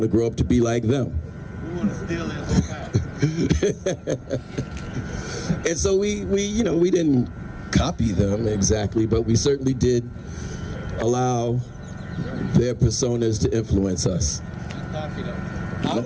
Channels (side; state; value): both; identical; correlation 1.00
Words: to grow up to be like them. We want to steal it. And so we didn't copy them exactly, but we certainly did allow their personas to influence us. I was